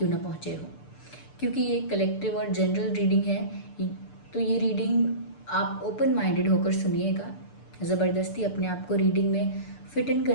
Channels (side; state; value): right; late; 6.8 ms